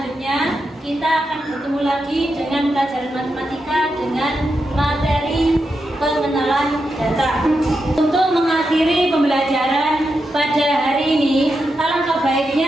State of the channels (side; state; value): both; normal; correlation 0.87